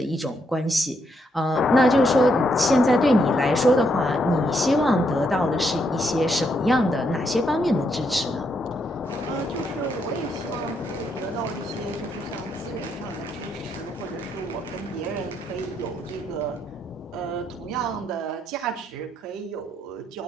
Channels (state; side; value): normal; both; correlation 0.77